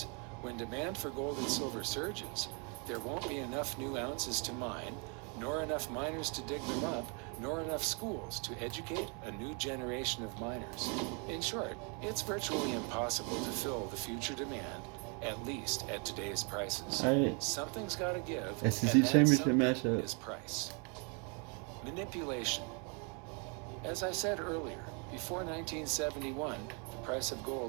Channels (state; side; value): quieter; left; 35.8 dB